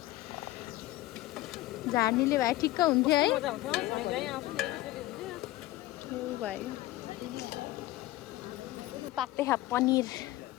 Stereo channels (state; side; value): quieter; right; 17.0 dB